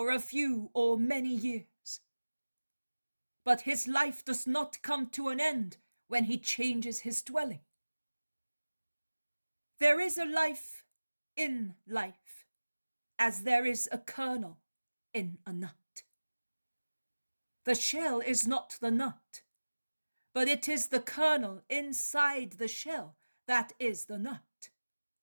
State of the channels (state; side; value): inverted; both; correlation -1.00